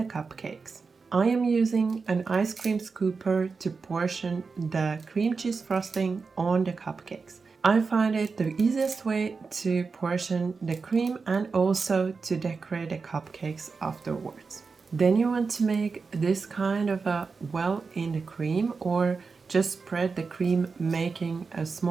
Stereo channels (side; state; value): left; quieter; 4.7 dB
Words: cupcakes. I am using an ice cream scooper to portion the cream cheese frosting on the cupcakes. I find it the easiest way to portion the cream and also to decorate the cupcakes afterwards. Then you want to make this kind of a well in the cream, or just spread the cream making a